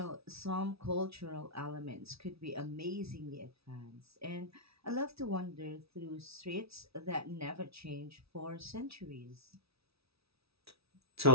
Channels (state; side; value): late; left; 0.77 ms